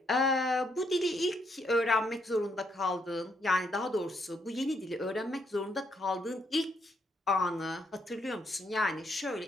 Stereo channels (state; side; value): normal; both; correlation 0.75